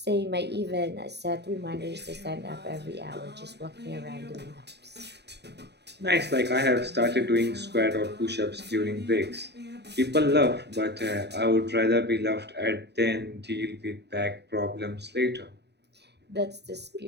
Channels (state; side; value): late; left; 0.49 ms